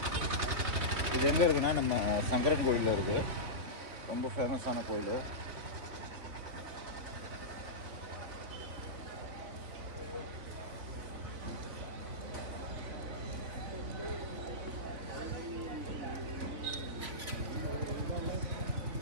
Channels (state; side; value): late; left; 3.5 ms